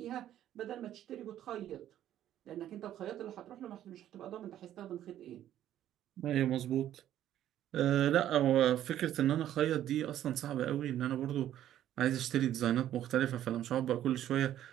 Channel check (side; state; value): left; quieter; 11.8 dB